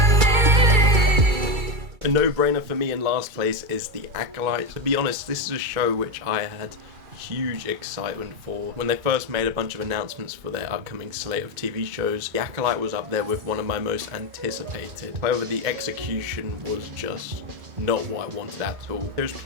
A no-brainer for me in last place is The Acolyte. To be honest, this is a show which I had huge excitement for. When they first made a bunch of announcements for their upcoming slate of TV shows, The Acolyte was up there with one of my most anticipated. However, the execution was just not what I wanted at all. There's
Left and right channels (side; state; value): left; late; 2.3 ms